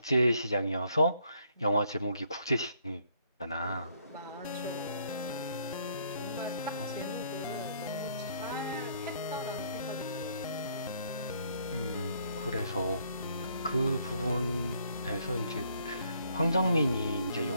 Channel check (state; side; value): inverted; both; correlation -0.67